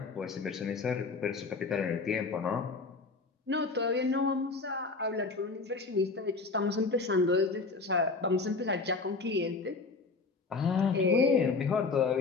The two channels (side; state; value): right; quieter; 4.1 dB